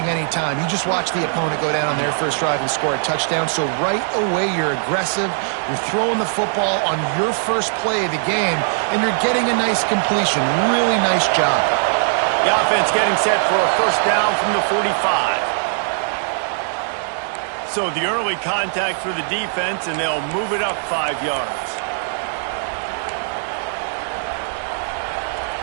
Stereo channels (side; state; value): left; silent; 59 dB below the other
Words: any time. You just watch the opponent go down on their first drive and score a touchdown. So right away, you're aggressive. You're throwing the football on your first play of the game, and you're getting a nice completion. Really nice job. The offense getting set for a first down from the 45. So the early contact for the defense, and they'll move it up 5 yards.